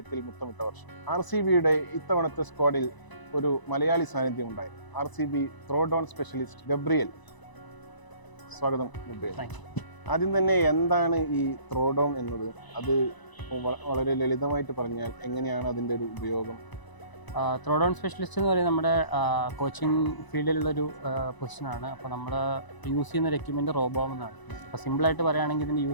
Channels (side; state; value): right; late; 1.0 ms